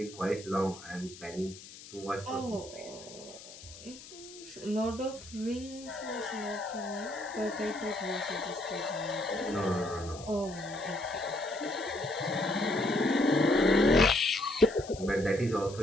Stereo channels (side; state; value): left; noise; hiss, 17 dB below the sound